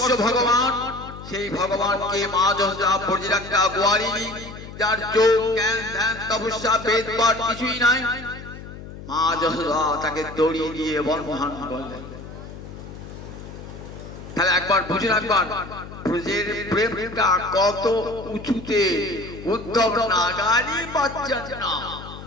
ভগবান, সেই ভগবানকে মা যশোদা বর্জির একটা গোয়ারিনী, যার যোগ জ্ঞান ধ্যান তপস্যা বেদ পাঠ কিছুই নাই, মা যশোদা তাকে দড়ি দিয়ে বন্ধন করলেন। তাহলে একবার বুঝুন, একবার ব্রজের প্রেমটা কত উঁচুতে। উদ্ধব নাগালই পাচ্ছেন না।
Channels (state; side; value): noise; left; hum, 13 dB below the sound